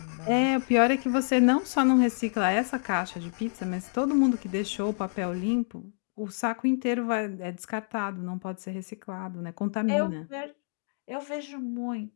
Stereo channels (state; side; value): silent; right; digital silence